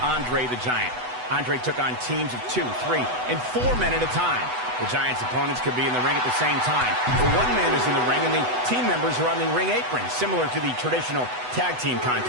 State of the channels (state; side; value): late; left; 8.0 ms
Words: Andre the Giant. Andre took on teams of 2, 3, and 4 men at a time. The Giant's opponents could be in the ring at the same time. But one man is in the ring, and the team members are on the ring apron, similar to the traditional tag team